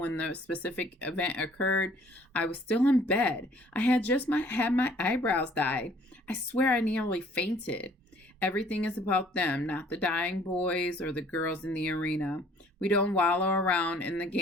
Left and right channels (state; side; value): normal; both; correlation 0.57